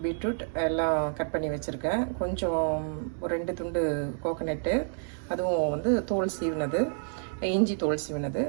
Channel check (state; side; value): silent; left; digital silence